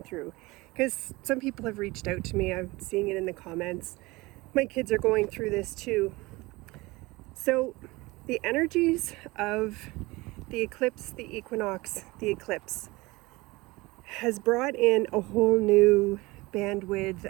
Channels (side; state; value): left; quieter; 22.1 dB